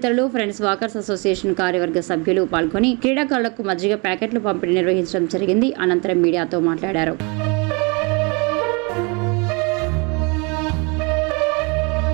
ఫ్రెండ్స్ వాకర్స్ అసోసియేషన్ కార్యవర్గ సభ్యులు పాల్గొని క్రీడాకారులకు మజ్జిగ ప్యాకెట్లు పంపిణీ నిర్వహించడం జరిగింది. అనంతరం మీడియాతో మాట్లాడారు.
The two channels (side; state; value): left; quieter; 30.8 dB